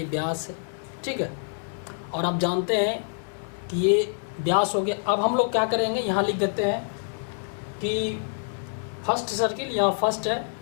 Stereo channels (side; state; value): right; silent; digital silence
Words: व्यास है, ठीक है। और आप जानते हैं कि ये व्यास हो गया। अब हम लोग क्या करेंगे, यहाँ लिख देते हैं कि फर्स्ट सर्किल, यहाँ फर्स्ट है,